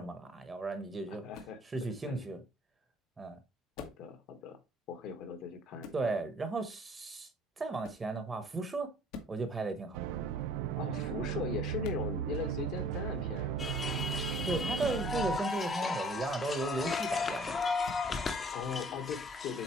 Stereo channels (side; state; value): both; normal; correlation 0.53